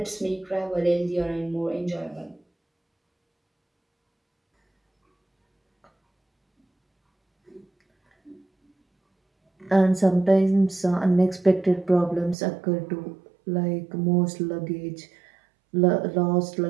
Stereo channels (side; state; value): left; drops out; at 12.4 s